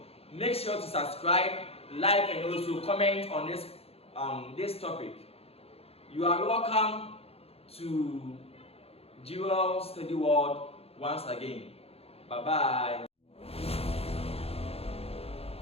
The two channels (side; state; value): right; late; 0.29 ms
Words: Make sure to subscribe, like, and also comment on this topic. You are welcome to Jewel Study World once again. Bye bye.